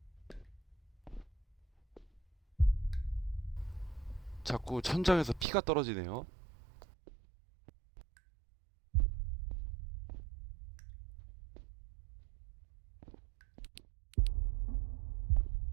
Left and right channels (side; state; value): left; drops out; at 5.5 s